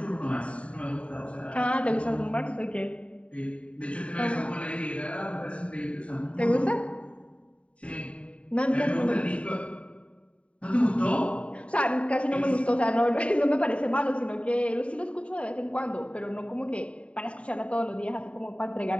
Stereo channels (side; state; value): right; late; 0.063 ms